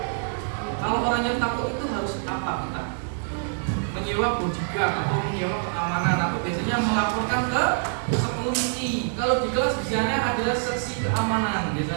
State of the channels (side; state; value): left; silent; digital silence